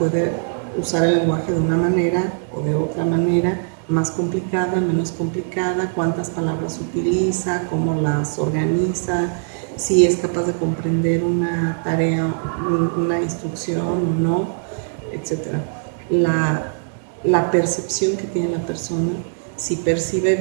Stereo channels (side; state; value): left; silent; digital silence